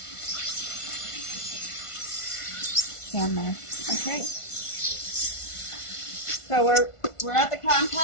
Down there. Okay. So we're at the cotton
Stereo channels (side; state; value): right; late; 1.5 ms